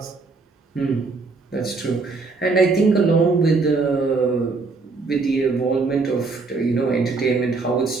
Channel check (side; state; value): left; quieter; 4.0 dB